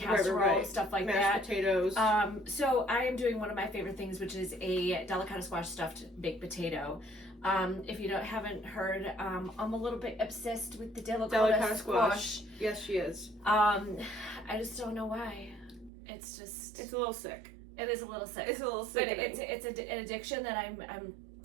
stuff like Mashed that. potatoes. So I am doing one of my favorite things, which is a delicata squash stuffed baked potato. If you haven't heard, I'm a little bit obsessed with the delicata squash. Yes, she is. I just don't know why. It's a little sick. It is a little sick. It's a little sick. But it's an addiction that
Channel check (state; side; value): drops out; left; at 15.9 s